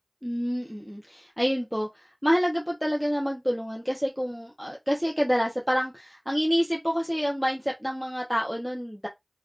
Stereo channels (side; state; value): both; identical; correlation 1.00